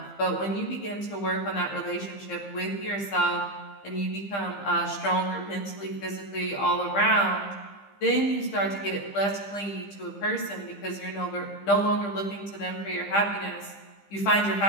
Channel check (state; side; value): late; right; 15 ms